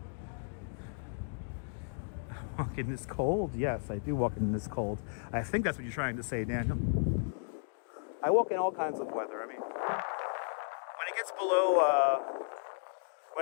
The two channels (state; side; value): silent; right; digital silence